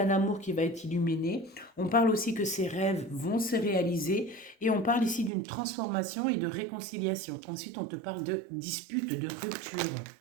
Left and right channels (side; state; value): left; drops out; at 5.3 s